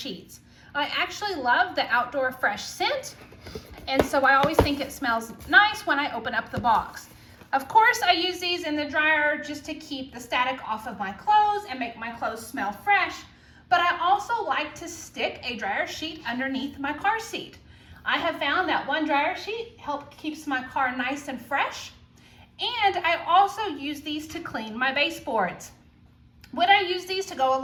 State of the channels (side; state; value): both; identical; correlation 1.00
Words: I actually love the Outdoor Fresh scent, and so I always think it smells nice when I open up the box. Of course, I use these in the dryer just to keep the static off of my clothes and make my clothes smell fresh, but I also like to stick a dryer sheet underneath my car seat. I have found that one dryer sheet keeps my car nice and fresh, and I also use these to clean my baseboards. When I use these to go